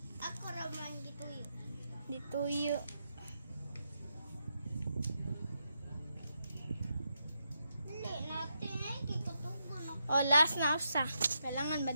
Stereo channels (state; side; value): inverted; both; correlation -0.83